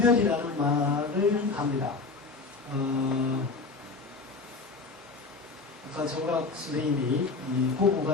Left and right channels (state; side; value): quieter; right; 4.0 dB